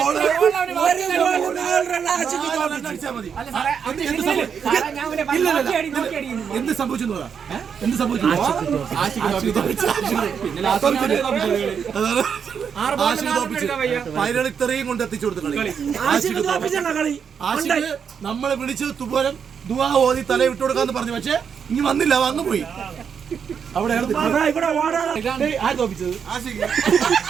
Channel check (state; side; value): quieter; left; 7.1 dB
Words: എന്ത് സംഭവിച്ചു? Final ഇത്രയും കൊണ്ട് എത്തിച്ചു കൊടുത്തു കളി. ആഷിഖ് നമ്മളെ വിളിച്ചത് തുപോലം ദുആ ഓതി തല വിട്ടു കൊടുക്കാന്ന് പറഞ്ഞു. പക്ഷെ ഇനി വന്നില്ല, വന്നു പോയി. അവിടെ